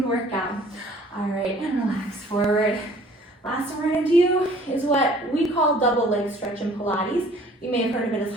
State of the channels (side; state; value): both; normal; correlation 0.54